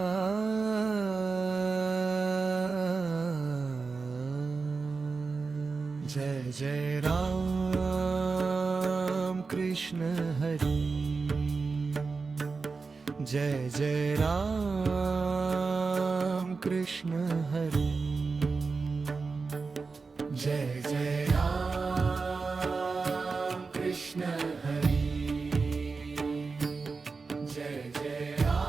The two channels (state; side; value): quieter; left; 4.4 dB